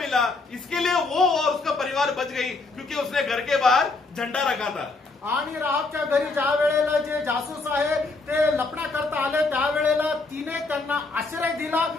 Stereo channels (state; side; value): quieter; right; 3.6 dB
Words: इसके लिए वो और उसका परिवार बच गई, क्योंकि उसने घर के बाहर झंडा रखा था। आणि राहाबच्या घरी ज्या वेळेला जे जासूस आहे ते लपण्या करता आले त्यावेळेला तिने त्यांना आश्रय दिला,